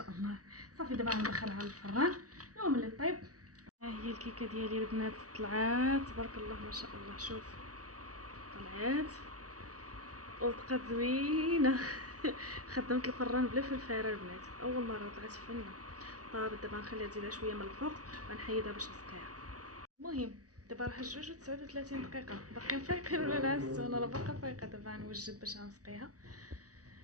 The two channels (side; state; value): left; late; 0.67 ms